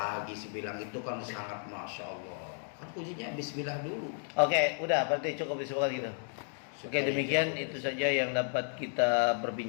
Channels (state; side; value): silent; right; 56 dB below the other